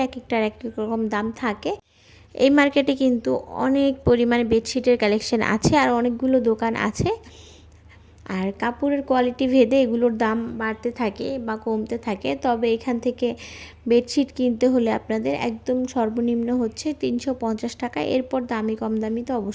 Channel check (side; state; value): both; identical; correlation 1.00